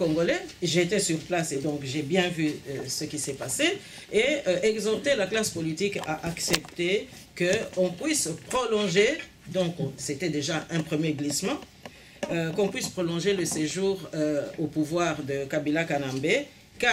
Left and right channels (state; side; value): identical; both; correlation 1.00